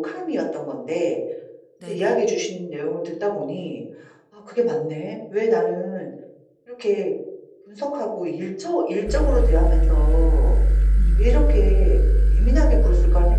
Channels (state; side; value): identical; both; correlation 1.00